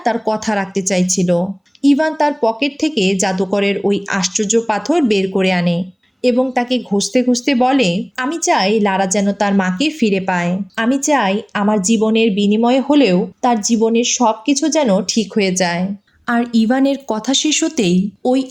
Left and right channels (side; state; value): both; identical; correlation 1.00